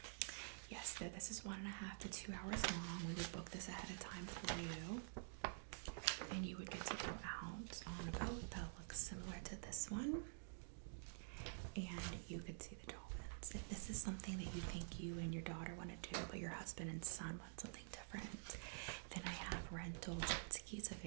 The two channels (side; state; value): left; silent; digital silence